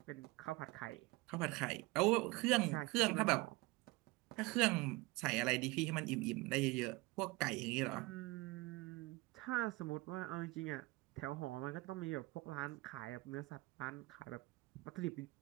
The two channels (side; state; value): left; quieter; 22.6 dB